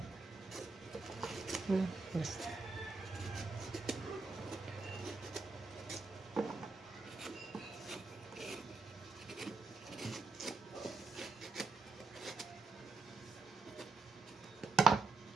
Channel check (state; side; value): quieter; left; 3.9 dB